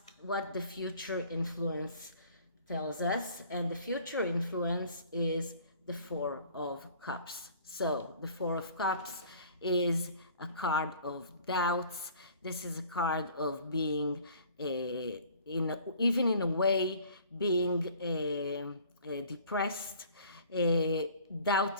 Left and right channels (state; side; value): inverted; both; correlation -0.51